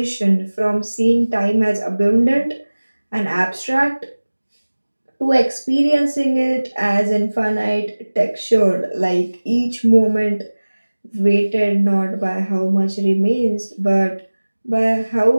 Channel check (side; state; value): both; inverted; correlation -1.00